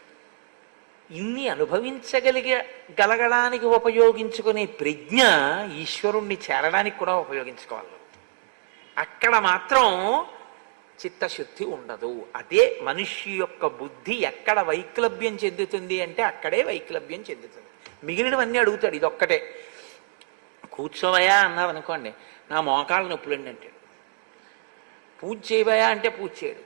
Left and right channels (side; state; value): left; silent; digital silence